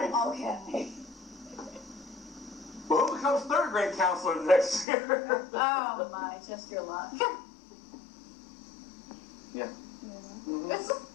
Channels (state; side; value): drops out; right; at 4.9 s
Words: Oh, okay. Well, who becomes 3rd grade counselor next year? Oh, my, just your luck. Yeah.